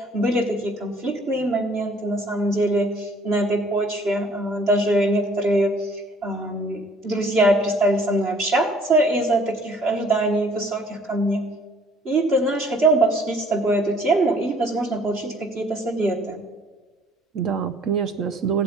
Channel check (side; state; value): both; normal; correlation 0.57